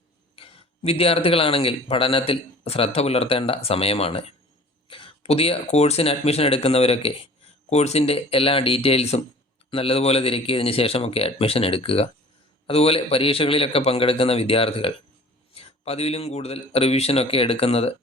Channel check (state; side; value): normal; both; correlation 0.46